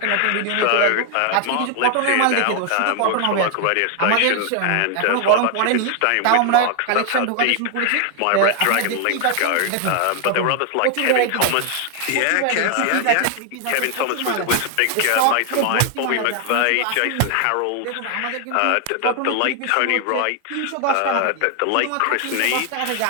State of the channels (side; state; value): both; different; correlation 0.00